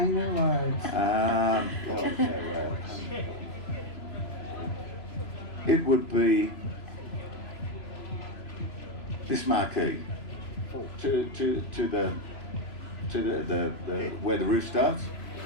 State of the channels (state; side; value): late; right; 3.0 ms